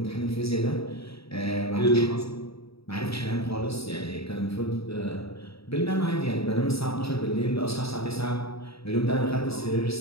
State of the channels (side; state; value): right; late; 0.77 ms